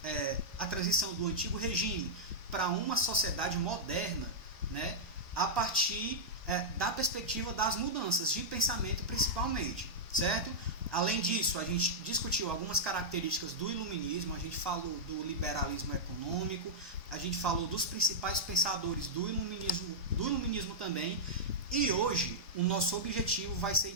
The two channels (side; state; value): right; late; 1.1 ms